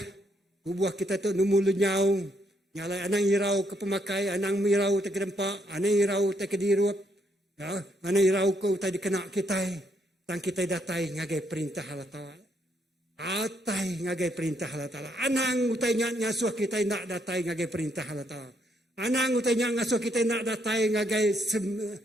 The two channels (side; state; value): both; normal; correlation 0.74